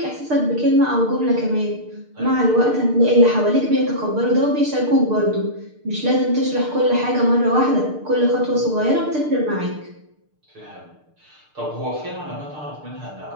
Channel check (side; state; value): left; late; 6.6 ms